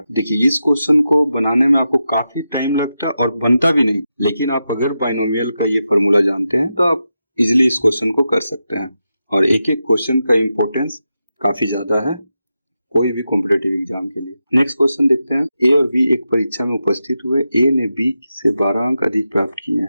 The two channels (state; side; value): inverted; both; correlation -0.89